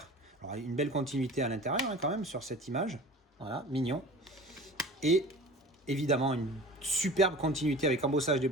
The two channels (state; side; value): normal; both; correlation 0.40